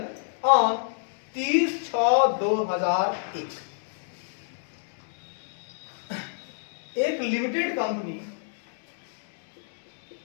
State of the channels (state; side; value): silent; right; digital silence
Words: on 30/6/2001। एक लिमिटेड कंपनी,